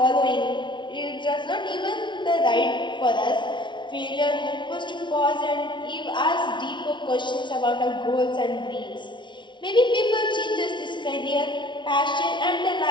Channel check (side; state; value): right; late; 0.23 ms